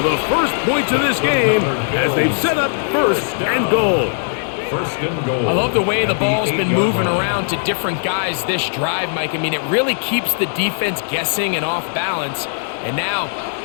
the first points of this game as they've set up 1st and goal. 1st and goal. I love the way the ball's been moving around to different guys this drive, Mike. I mean, it really keeps the defense guessing and off balance. And now,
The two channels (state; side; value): silent; right; digital silence